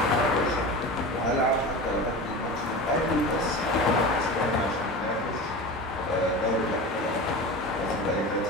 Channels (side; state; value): both; normal; correlation 0.30